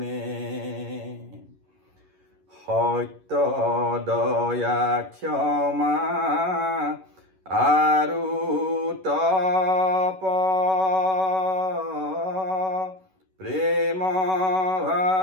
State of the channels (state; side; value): late; left; 11 ms